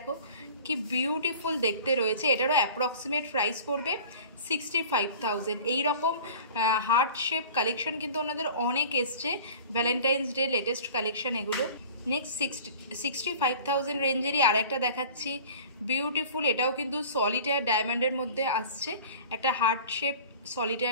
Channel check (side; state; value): both; inverted; correlation -0.43